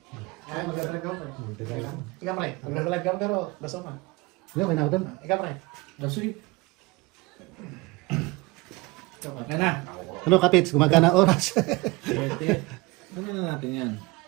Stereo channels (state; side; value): quieter; left; 23.2 dB